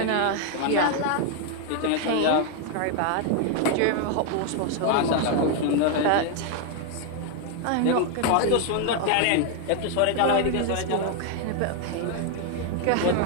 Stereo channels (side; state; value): both; different; correlation 0.00